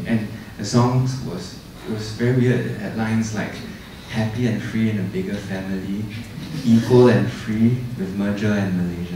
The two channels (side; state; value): both; identical; correlation 1.00